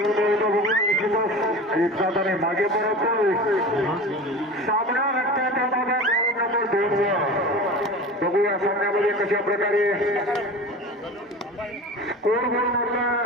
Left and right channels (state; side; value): normal; both; correlation 0.34